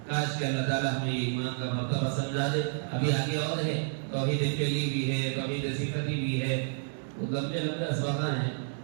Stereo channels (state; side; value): silent; left; digital silence